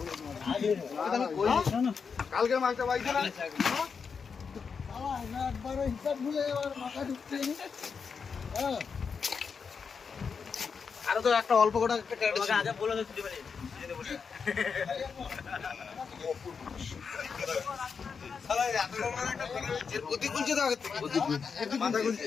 কালকে মাছটা পাইছে না একবার হিসাব ভুলে এবার মাথা ঢুকছে হ্যাঁ আরো তো একটা অল্প কটা একটা আগে বলে তো ছুটি পারি গতি খুলছে তো আগে মাথা খুলছে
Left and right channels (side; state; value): right; quieter; 5.8 dB